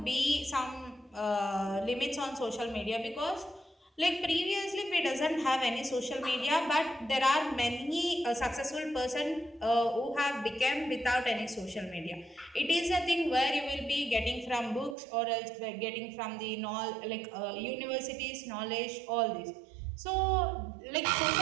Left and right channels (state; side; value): drops out; left; at 15.0 s